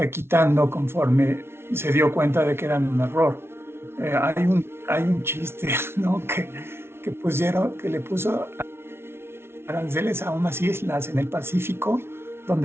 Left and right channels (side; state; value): left; late; 0.12 ms